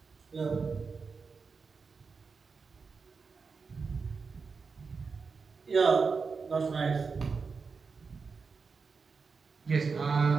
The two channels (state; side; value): quieter; left; 5.0 dB